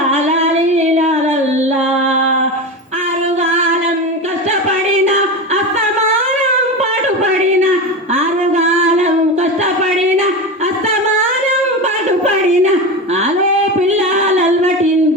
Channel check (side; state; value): both; normal; correlation 0.22